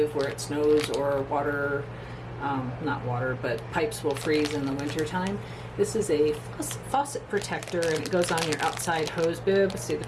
where it snows or water, not water, but pipes will freeze in the wintertime. This is a faucet protector, and it goes on your outside hose bib. See the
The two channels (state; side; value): identical; both; correlation 1.00